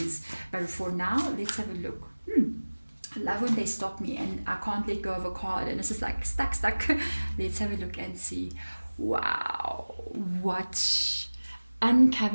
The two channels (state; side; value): inverted; both; correlation -1.00